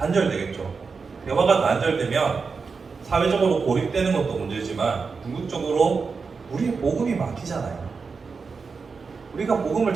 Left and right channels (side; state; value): left; quieter; 4.9 dB